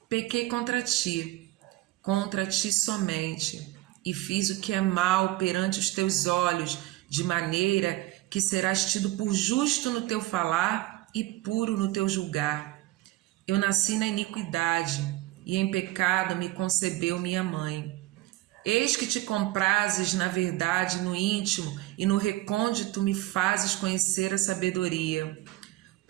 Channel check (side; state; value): left; quieter; 17.7 dB